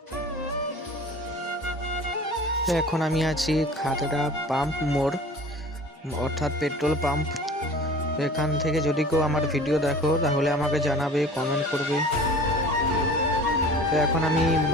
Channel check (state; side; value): normal; both; correlation 0.43